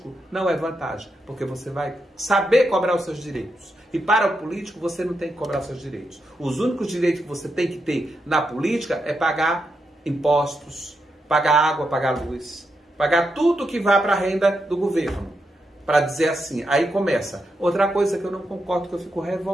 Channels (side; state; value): both; normal; correlation 0.84